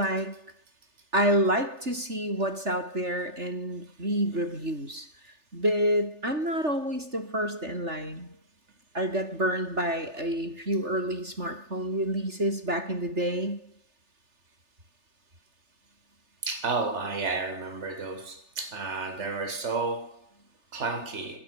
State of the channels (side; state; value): left; late; 3.4 ms